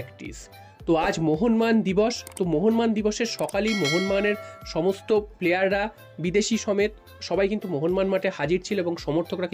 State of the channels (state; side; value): identical; both; correlation 1.00